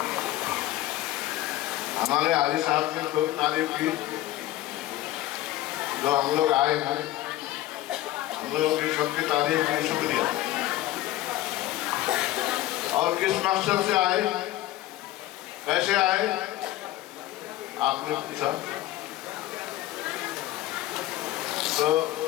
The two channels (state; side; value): quieter; right; 15.4 dB